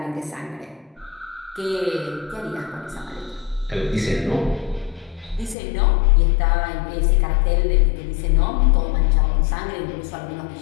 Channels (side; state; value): right; drops out; at 5.6 s